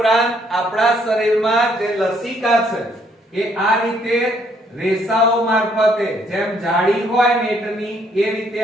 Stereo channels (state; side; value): normal; both; correlation 0.68